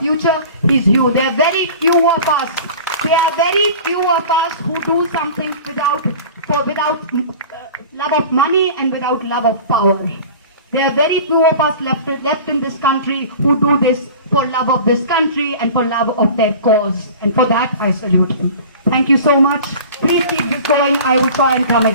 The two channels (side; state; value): both; inverted; correlation -0.40